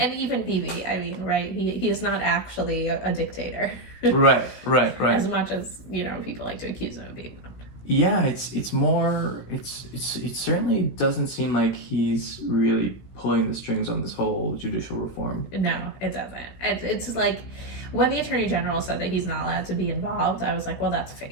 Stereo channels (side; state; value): right; late; 16 ms